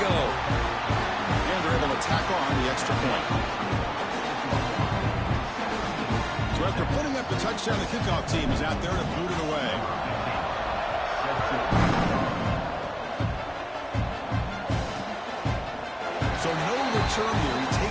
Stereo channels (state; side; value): identical; both; correlation 1.00